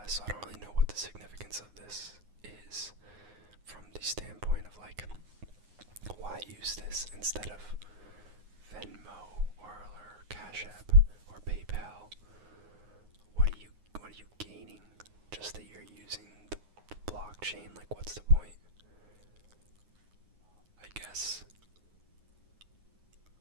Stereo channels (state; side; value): late; left; 9.6 ms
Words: so I don't really know what the significance of this is from the standpoint of like, why use this instead of Venmo or Cash App or PayPal? What are you gaining? Just that you're using the blockchain? Like, what's the point? I guess